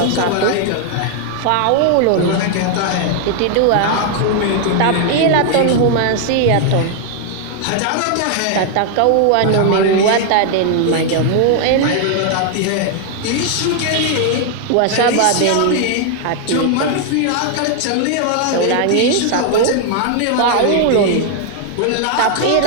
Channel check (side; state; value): both; different; correlation 0.00